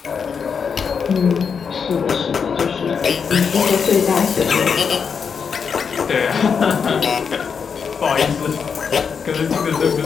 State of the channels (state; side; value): quieter; right; 6.3 dB